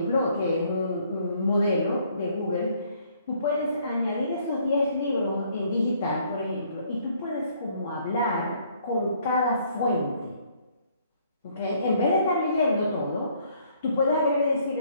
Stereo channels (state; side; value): inverted; both; correlation -0.65